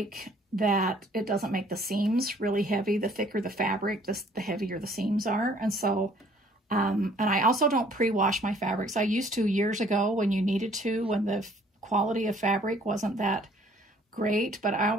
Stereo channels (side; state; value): both; normal; correlation 0.58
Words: that it doesn't make the seams really heavy. The thicker the fabric, the heavier the seams are. And so, and I also don't pre-wash my fabrics. I used to years ago when you needed to, when the quality of fabric wasn't that great, but I